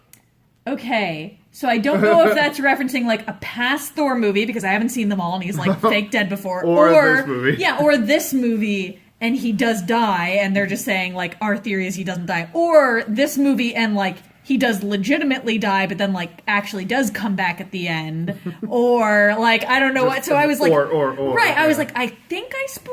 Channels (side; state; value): both; identical; correlation 1.00